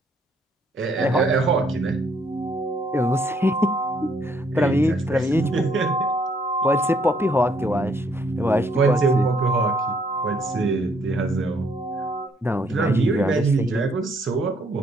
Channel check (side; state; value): both; normal; correlation 0.68